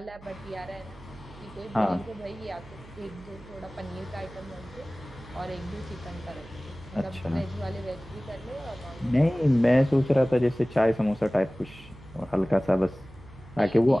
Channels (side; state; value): right; noise; hum, 20 dB below the sound